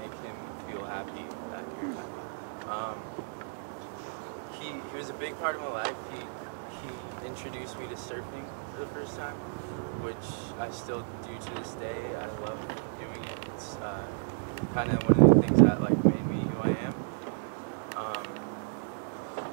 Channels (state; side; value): silent; left; digital silence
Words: him feel happy that you're happy. He was a big part of my life. He introduced me to surfing for the first time, which I still do to this day. I love doing it. It's kind of one of the things that like made me who I am.